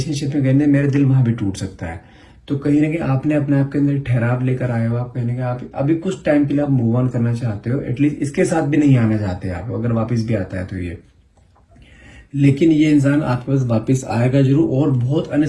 में गए ना, मेरा दिल वहां भी टूट सकता है। तो कहीं ना कहीं आपने अपने आप के अंदर ठहराव लेकर आए हो, आप कहीं ना कहीं आप अभी कुछ टाइम के लिए आप मूव ऑन करना चाहते हो, एटलीस्ट इसके साथ भी नहीं आना चाहते आप, अगर वापस भी आता है तो ये। लेकिन ये इंसान आपके पास वापस आएगा जरूर, और बहुत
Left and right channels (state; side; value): identical; both; correlation 1.00